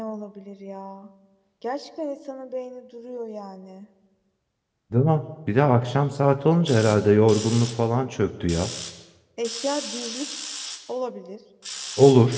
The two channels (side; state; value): both; identical; correlation 1.00